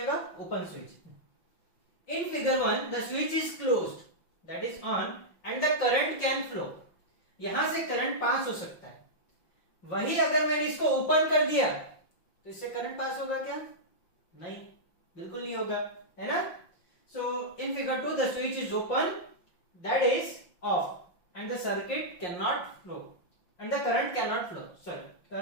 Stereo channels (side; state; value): right; late; 5.7 ms